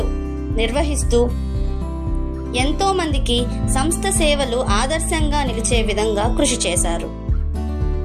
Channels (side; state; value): both; identical; correlation 1.00